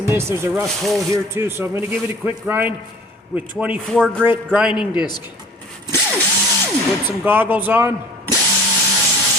this. There's a rust hole here too, so I'm going to give it a quick grind with 24 grit grinding disc. Put some goggles on.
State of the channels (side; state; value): both; normal; correlation 0.48